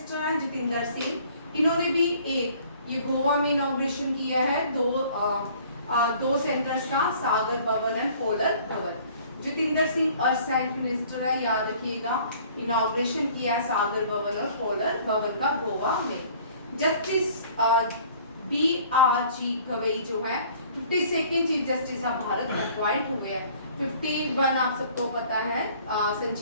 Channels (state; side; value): inverted; both; correlation -0.53